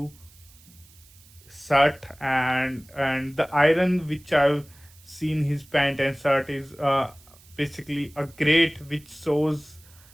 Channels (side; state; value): right; noise; hiss, 26 dB below the sound